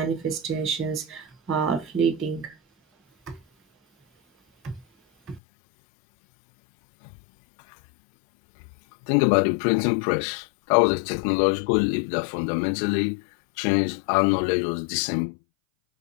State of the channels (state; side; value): drops out; right; at 5.4 s